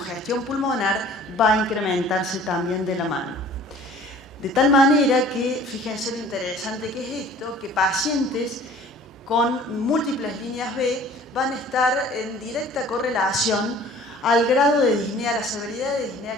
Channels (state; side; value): normal; both; correlation 0.49